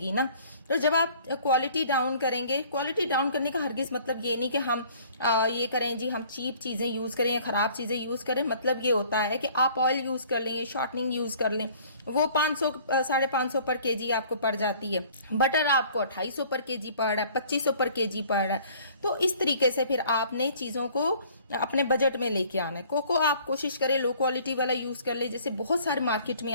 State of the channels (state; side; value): inverted; both; correlation -0.53